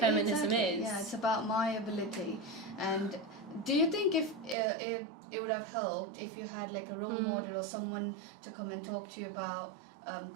is. Yeah, it's about my ability. And do you think if it would have helped if you had like a role model or someone to come and talk to you about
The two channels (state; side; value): drops out; left; at 4.5 s